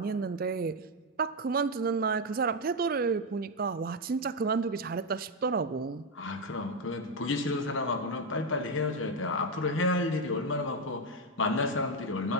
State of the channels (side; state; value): both; normal; correlation 0.05